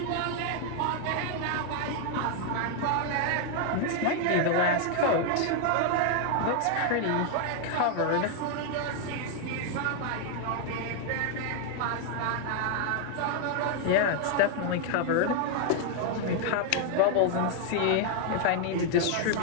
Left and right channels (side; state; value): both; different; correlation 0.00